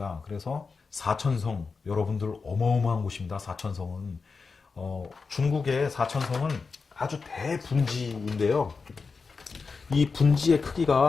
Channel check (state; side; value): quieter; right; 4.7 dB